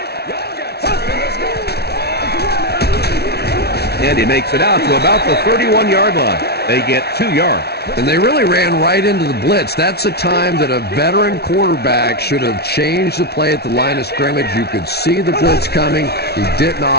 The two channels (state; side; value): late; right; 0.47 ms